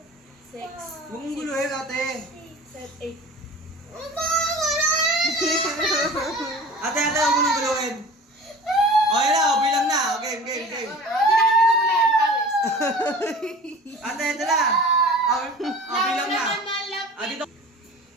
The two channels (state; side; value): normal; both; correlation 0.41